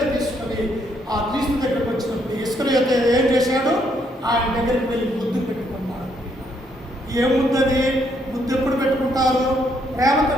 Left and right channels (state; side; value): normal; both; correlation 0.72